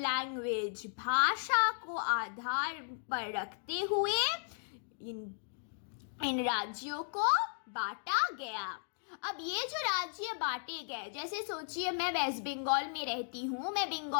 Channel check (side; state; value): right; silent; digital silence